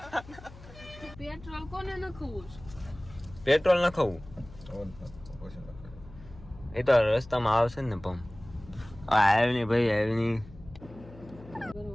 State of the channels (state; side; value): noise; left; hum, 19 dB below the sound